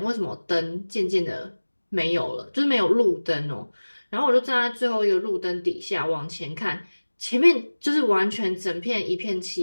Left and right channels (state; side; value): inverted; both; correlation -1.00